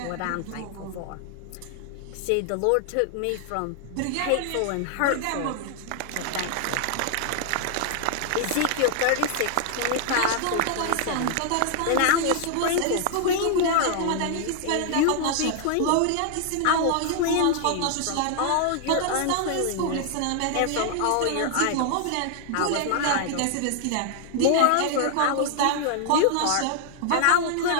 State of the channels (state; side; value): different; both; correlation 0.00